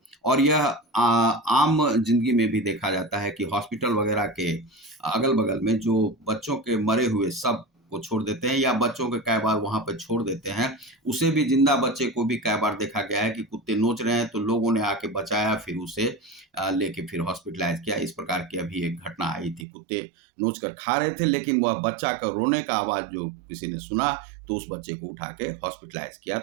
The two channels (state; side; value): drops out; left; at 19.7 s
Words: और यह आम जिंदगी में भी देखा जाता है कि हॉस्पिटल वगैरह के अगल बगल में जो बच्चों के मरे हुए सब को छोड़ देते हैं या बच्चों के कई बार वहां पर छोड़ देते हैं, उसे भी जिंदा बच्चे को भी कई बार देखा गया है कि कुत्ते नोच रहे हैं तो लोगों ने आके बचाया, फिर उसे लेके फिर हॉस्पिटलाइज किया। इस प्रकार की अभी एक घटना आई थी, कुत्ते नोच कर खा रहे थे लेकिन वह बच्चा का रोने का आवाज जो किसी ने सुना तो उस बच्चे को उठा के हॉस्पिटलाइज किया